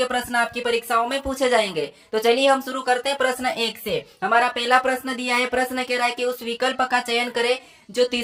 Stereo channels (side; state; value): both; identical; correlation 1.00